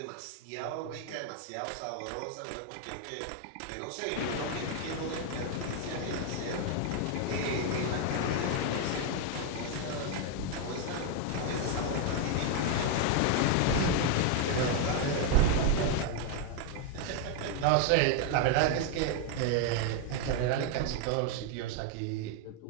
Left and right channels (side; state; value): both; different; correlation 0.00